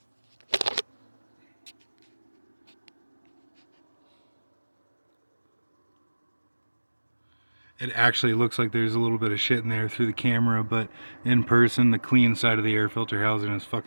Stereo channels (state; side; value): inverted; both; correlation -1.00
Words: it actually looks like there's a little bit of shit in there through the camera, but in person, the clean side of the air filter housing is